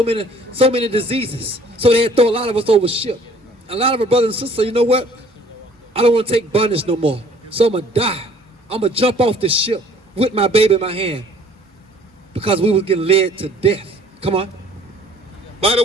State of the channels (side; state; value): both; normal; correlation 0.55